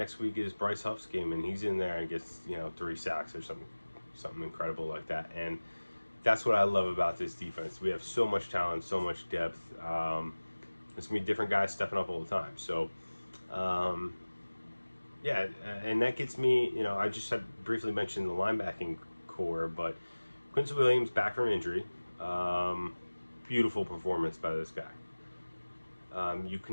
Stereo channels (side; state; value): both; inverted; correlation -1.00